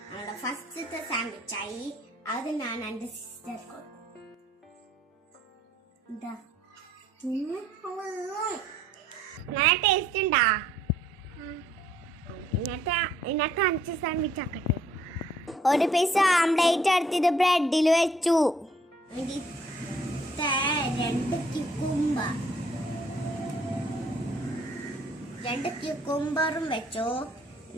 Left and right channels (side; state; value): both; normal; correlation 0.63